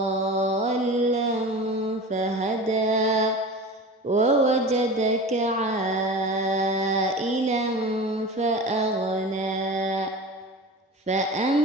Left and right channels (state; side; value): normal; both; correlation 0.33